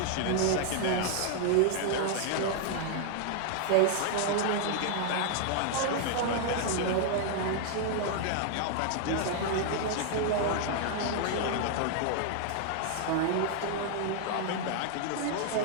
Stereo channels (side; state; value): both; different; correlation 0.00